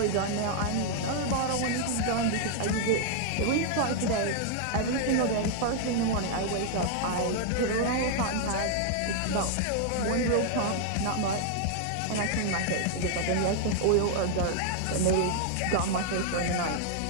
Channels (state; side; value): different; both; correlation 0.00